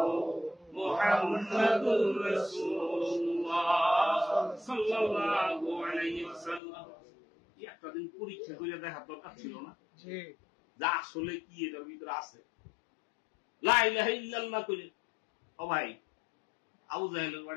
মুহাম্মাদুর রাসূলুল্লাহ সাল্লাল্লাহু আলাইহি ওয়াসাল্লাম। একটা দিন পরীক্ষা করে দেখার দরকার ছিল না যা আসলে কি এটার ভিতরে আছে? লা ইলাহা ইল্লাল্লাহ কইলে, ও ভাই আবু জাহেলের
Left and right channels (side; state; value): right; drops out; at 6.6 s